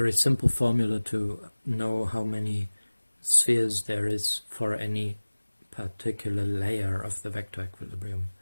simple formula to know how many spheres there is for any particular layer of the vector equilibrium.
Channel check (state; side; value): inverted; both; correlation -1.00